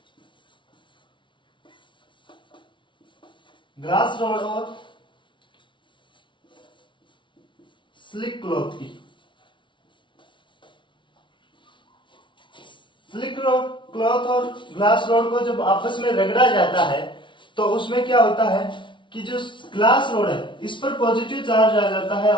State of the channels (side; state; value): right; late; 0.24 ms